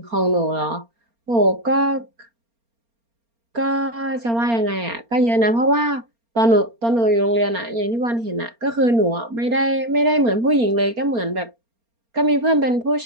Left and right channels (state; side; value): late; left; 4.3 ms